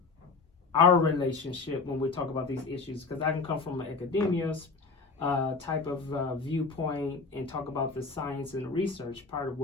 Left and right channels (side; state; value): right; quieter; 4.3 dB